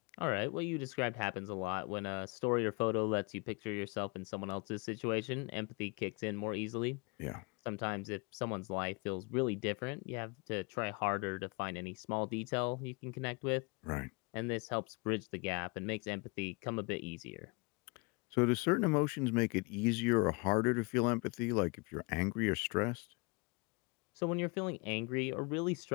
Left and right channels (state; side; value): quieter; right; 29.7 dB